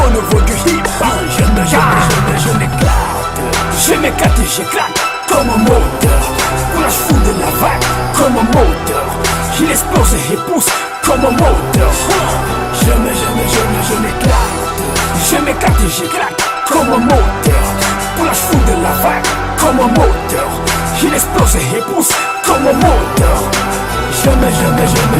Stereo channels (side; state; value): both; identical; correlation 1.00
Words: du hip-hop. Je m'éclate et j'éclate comme un moteur. Coulage fou de la vague comme un moteur. Il explose et pousse comme un moteur. Je m'éclate et j'éclate comme un moteur. Coulage fou de la vague comme un moteur. Il explose et pousse comme un moteur. Je